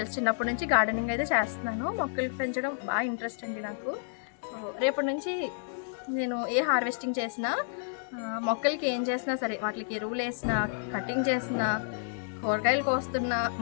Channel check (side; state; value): right; silent; digital silence